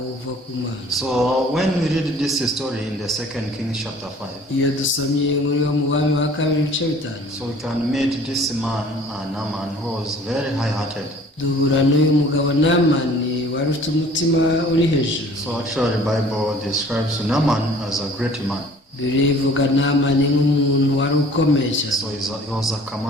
uva ku Mana. So when we read this story in the 2 Kings chapter 5, iyo dusomye inkuru yo mu Bami ba kabiri ibice 5, so we can meet this man, Naaman, who was very high-hearted. duhura n'uyu mugabo Naamani wari ufite umutima uri hejuru. So actually the Bible describes Naaman as a great man. birivuga Naamani nk'umuntu wari ukomeye cyane. So he was a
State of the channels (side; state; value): both; normal; correlation 0.51